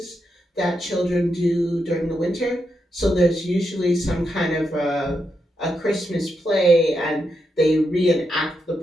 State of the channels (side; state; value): both; normal; correlation 0.84